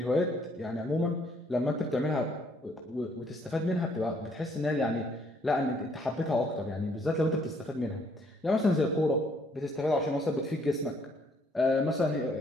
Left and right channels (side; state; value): both; normal; correlation 0.66